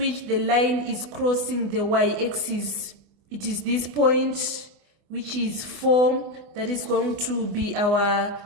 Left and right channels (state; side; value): late; left; 24 ms